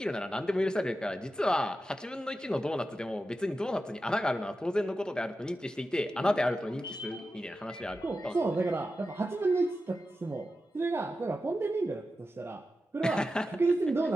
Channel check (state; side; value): normal; both; correlation 0.91